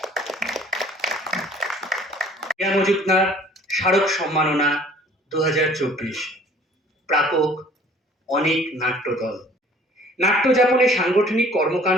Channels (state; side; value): normal; both; correlation 0.53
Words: কেয়া মজুমদার স্মারক সম্মাননা 2024, প্রাপক অনেক নাট্যদল। নাট্যযাপনে সাংগঠনিক